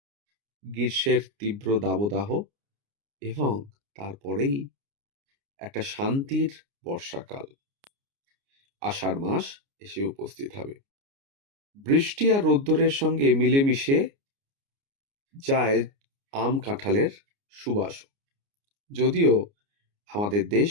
গ্রীষ্মের তীব্র দাবদাহ, এবং তারপরেই একটা শান্তির বর্ষাকাল, আষাঢ় মাস এসে উপস্থিত হবে। বৃষ্টি আর রোদ্দুরের সঙ্গে মিলেমিশে যায় আম কাঁঠালের সুবাস। যদিও আমাদের দেশ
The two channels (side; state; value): left; late; 29 ms